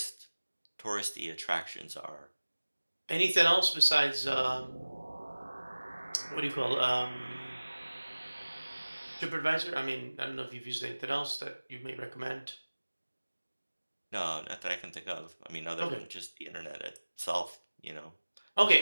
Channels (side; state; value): both; inverted; correlation -1.00